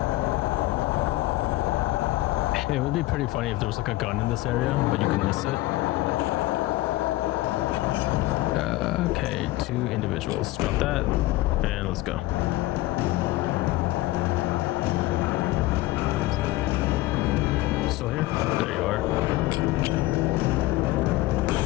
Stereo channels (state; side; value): quieter; right; 17.9 dB